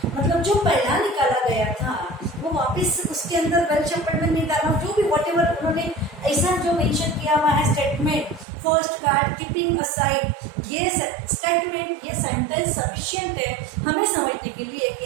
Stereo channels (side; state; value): left; drops out; at 8.5 s